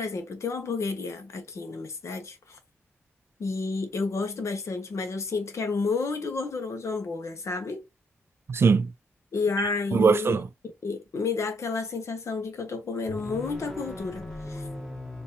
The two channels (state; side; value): normal; both; correlation 0.70